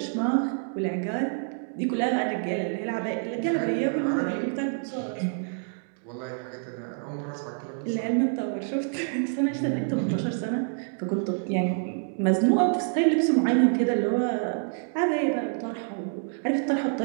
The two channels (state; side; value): silent; left; 60 dB below the other